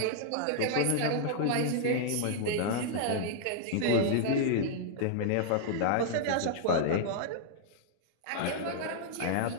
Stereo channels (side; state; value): both; different; correlation -0.01